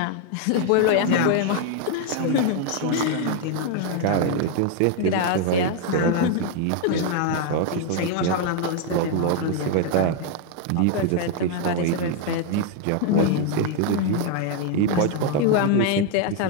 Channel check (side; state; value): both; different; correlation 0.00